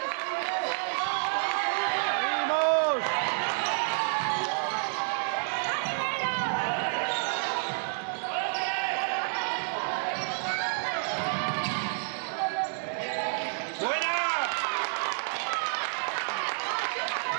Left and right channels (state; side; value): silent; left; 58 dB below the other